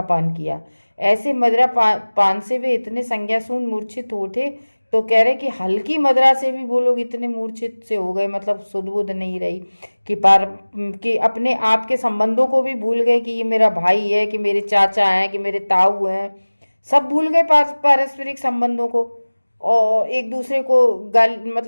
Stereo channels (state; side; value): inverted; both; correlation -1.00